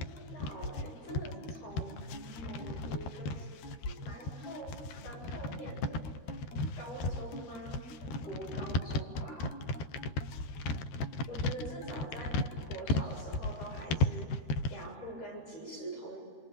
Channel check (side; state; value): right; late; 13 ms